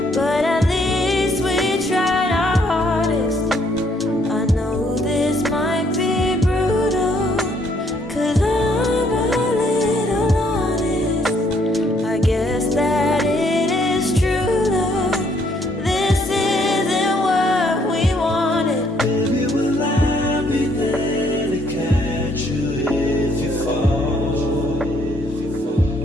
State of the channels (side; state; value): both; normal; correlation 0.68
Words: but at least we tried our hardest. I know this might be brutal, 'cause I'm a little honest. I guess that it is true love. This isn't what we wanted. Baby, will I be there to catch you if you fall?